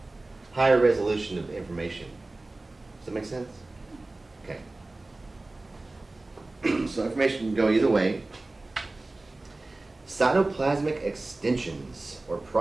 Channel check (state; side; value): quieter; left; 3.0 dB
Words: higher resolution of information. Does that make sense? Okay. So information can go either way. Cytoplasmic extensions or